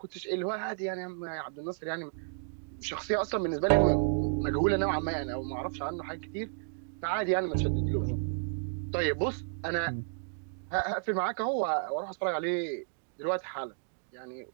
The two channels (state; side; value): silent; left; digital silence